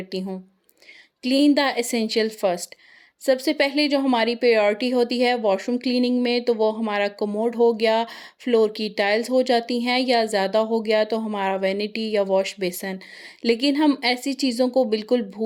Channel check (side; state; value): both; identical; correlation 1.00